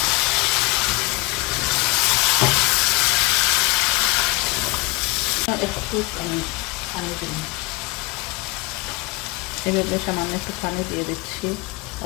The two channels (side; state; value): right; quieter; 22.2 dB